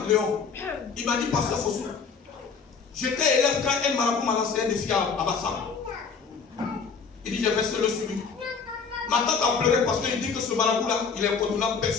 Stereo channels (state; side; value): quieter; right; 5.6 dB